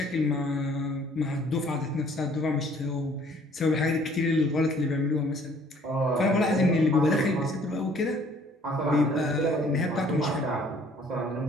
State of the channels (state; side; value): normal; both; correlation 0.58